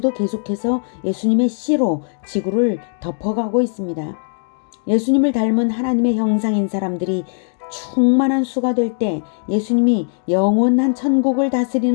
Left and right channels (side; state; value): right; silent; digital silence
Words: 계속해서 예수님의 씨로 지구를 덮어가고 있습니다. 예수님을 닮은 하나님의 형상인 사람들이 충만한 수가 될 때 예수님이 영원한 천국을